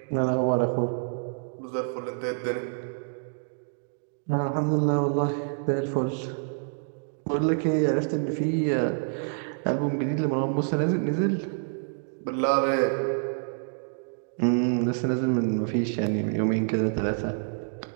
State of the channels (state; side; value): silent; left; digital silence